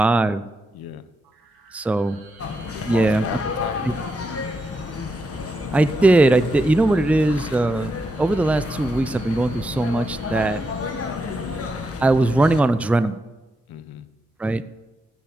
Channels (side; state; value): both; normal; correlation 0.85